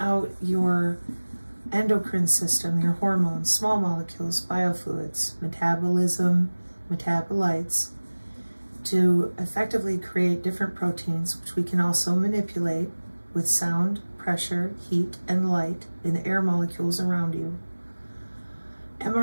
your endocrine system, your hormones, small molecules, biofluids, metabolism, metabolites, to effectively create different proteins, which we can also manipulate with sound, pressure, heat, and light in the air molecules around you.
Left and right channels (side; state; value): both; inverted; correlation -1.00